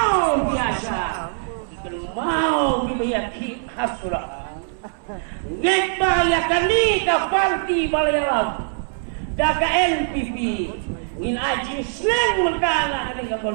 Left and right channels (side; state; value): left; silent; digital silence